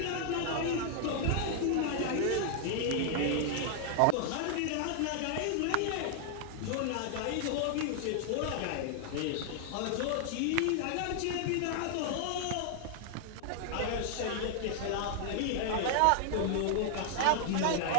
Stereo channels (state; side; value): different; both; correlation 0.00